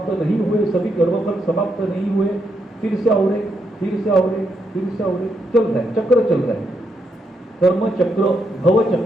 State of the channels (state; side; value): normal; both; correlation 0.80